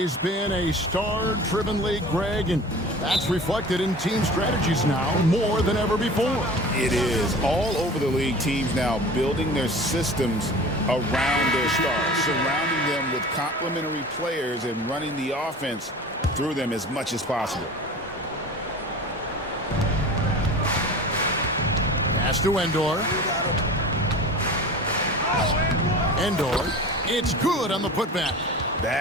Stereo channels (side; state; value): both; normal; correlation 0.38